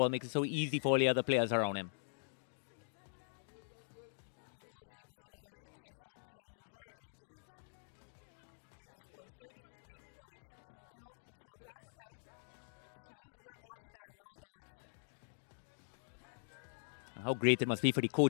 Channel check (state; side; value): silent; right; digital silence